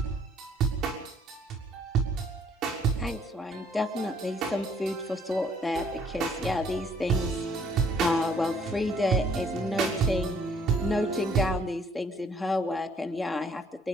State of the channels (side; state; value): both; normal; correlation 0.63